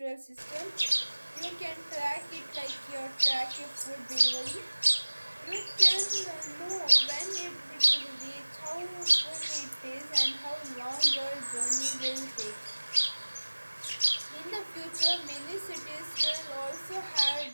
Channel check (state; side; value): inverted; both; correlation -1.00